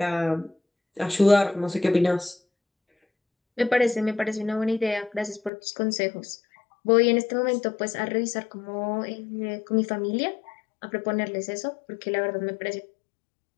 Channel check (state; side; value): drops out; right; at 5.5 s